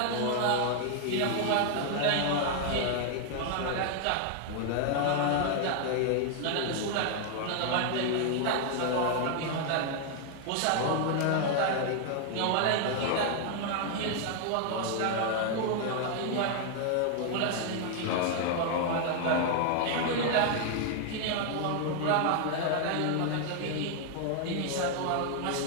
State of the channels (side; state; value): both; different; correlation 0.00